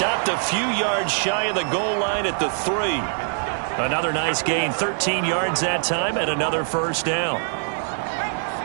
a few yards shy of the goal line at the 3. Another nice gain, 13 yards that time, and another first down.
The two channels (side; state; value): left; silent; digital silence